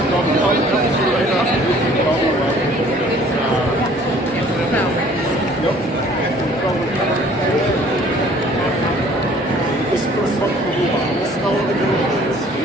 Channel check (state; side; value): normal; both; correlation 0.55